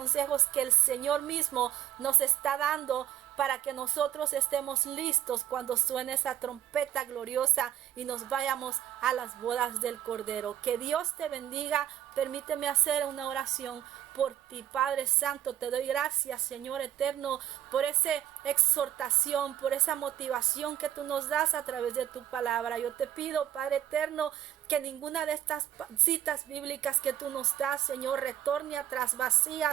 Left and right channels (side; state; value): left; quieter; 11.4 dB